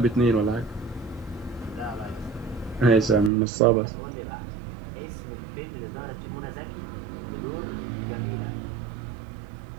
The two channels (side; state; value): left; drops out; at 3.3 s